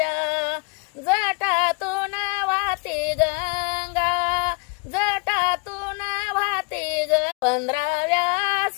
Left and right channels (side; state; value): right; quieter; 30.8 dB